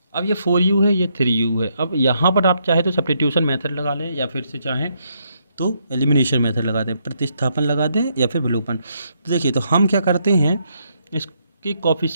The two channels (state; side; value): inverted; both; correlation -0.75